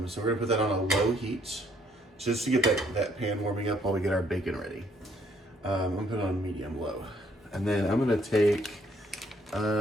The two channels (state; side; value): normal; both; correlation 0.67